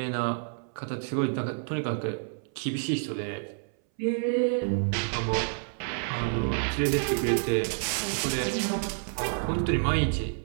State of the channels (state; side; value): silent; left; 59 dB below the other